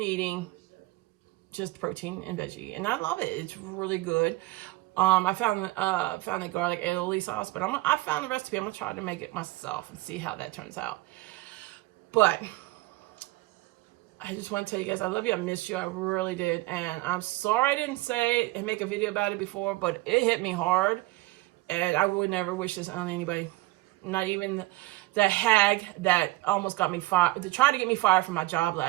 just protein and veggie, and I love it. It's really good. I found a garlic aioli sauce, but I found the recipe. I'm gonna try to make it myself and see how that turns out. But I just want to tell you guys, I love you. I missed you. I really did. And I'm sorry I didn't say and make a video about it before, but it hit me hard. And I would never wish this on anybody. Not even the hag that almost got me fired, to try to get me fired from my job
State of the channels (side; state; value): left; quieter; 20.1 dB